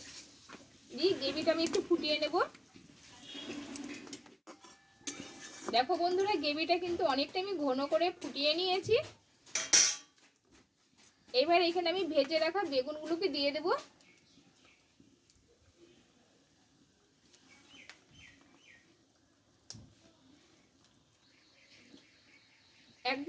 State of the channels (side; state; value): both; identical; correlation 1.00